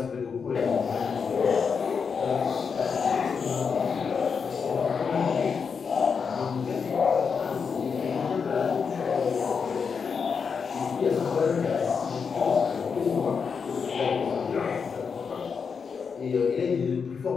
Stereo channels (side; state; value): right; quieter; 5.9 dB